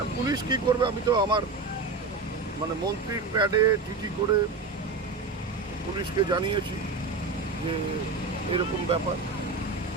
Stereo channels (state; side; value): quieter; left; 4.1 dB